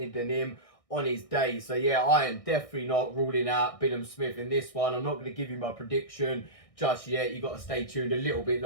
than him on his day. So yeah, I am definitely not ruling out Billam-Smith in this one. I'm not going to give you my prediction just yet. You got to stay tuned a little bit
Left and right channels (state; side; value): late; right; 1.6 ms